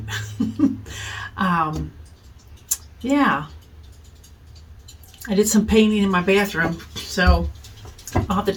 um, yeah, I did some painting in my bathroom, so I'll have to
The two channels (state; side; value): identical; both; correlation 1.00